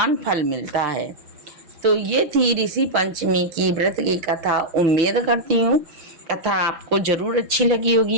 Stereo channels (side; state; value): left; late; 5.9 ms